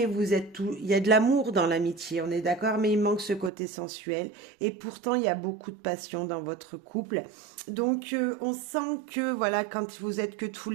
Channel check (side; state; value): left; drops out; at 3.5 s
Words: vous êtes tout, il y a de l'amour dans l'amitié, on est d'accord, mais il manque ce côté sensuel. Et pourtant, il y a beaucoup de passion dans votre couple. Donc, on sent que, voilà, quand vous êtes que tous